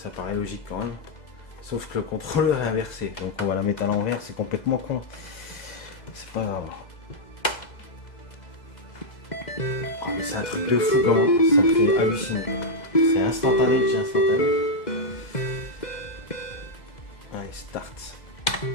paraît logique quand même. Sauf que le contrôleur est inversé. Donc on va la mettre à l'envers, c'est complètement con. C'est pas grave. Oh, mais c'est un truc de fou comment ça me fait halluciner. C'est instantané, j'ai instantané. Allez, start.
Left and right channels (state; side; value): late; right; 2.0 ms